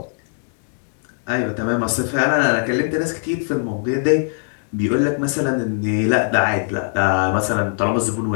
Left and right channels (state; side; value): silent; right; 66 dB below the other